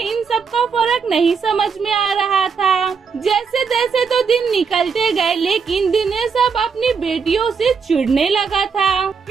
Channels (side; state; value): left; quieter; 5.8 dB